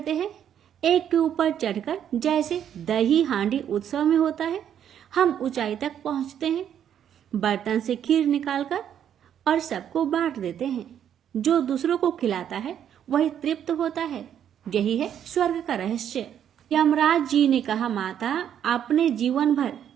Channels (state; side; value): quieter; left; 9.5 dB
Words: हैं, एक के ऊपर चढ़कर, जैसे दही हांडी उत्सव में होता है। हम ऊंचाई तक पहुंचते हैं, बर्तन से खीर निकालकर और सबको बांट देते हैं। जो दूसरों को खिलाता है वही तृप्त होता है। यही है स्वर्ग का रहस्य। यमराज जी ने कहा, माता, आपने जीवन भर